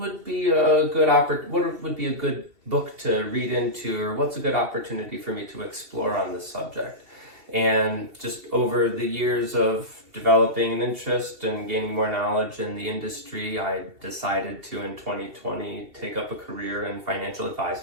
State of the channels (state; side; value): late; left; 2.7 ms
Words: be a good book to read into, or what's a good opportunity for me to explore on this subject? And just over the years of developing an interest and gaining more knowledge in the industry, I decided to, in 2020, take up a career in financial